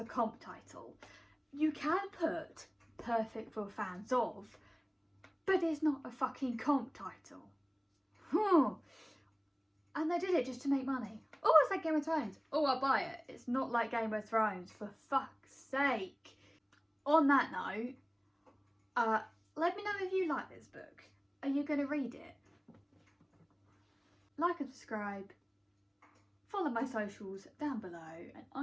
comp title? You can put perfect for fans of, but it's not a fucking comp title. And they did it just to make money. Oh, it's like Game of Thrones. Oh, I'll buy it. It's not like Game of Thrones, for fuck's sake. On that note, let me know if you like this book. Are you going to read it? Like and subscribe. Follow my socials down below, and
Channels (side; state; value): both; identical; correlation 1.00